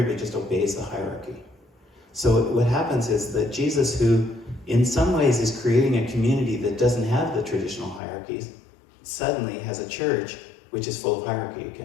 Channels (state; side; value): drops out; right; at 8.0 s